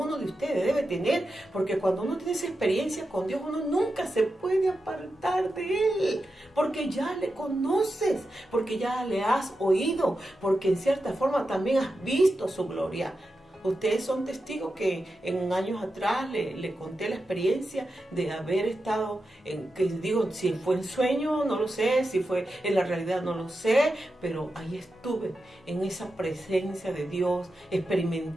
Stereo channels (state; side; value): normal; both; correlation 0.89